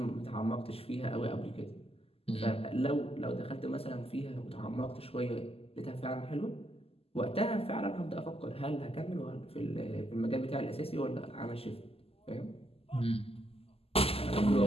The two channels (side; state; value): right; late; 0.28 ms